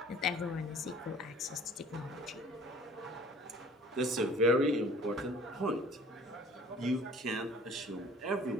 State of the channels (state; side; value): normal; both; correlation 0.50